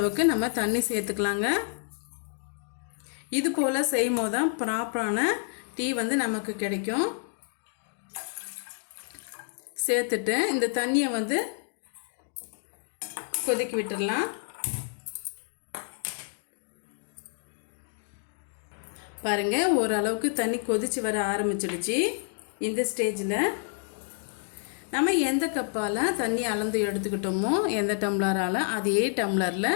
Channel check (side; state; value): right; silent; 59 dB below the other